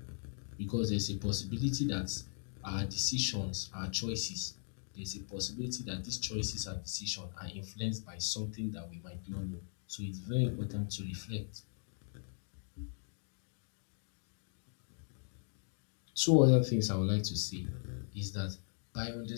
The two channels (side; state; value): right; silent; 52 dB below the other